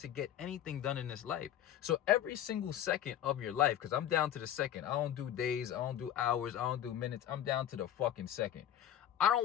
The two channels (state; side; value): quieter; right; 10.9 dB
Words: get anything done in this life. So every single second of your life, because I'm down to the second. I don't do days. I don't do hours. I don't do minutes. I'm down to the fucking second. I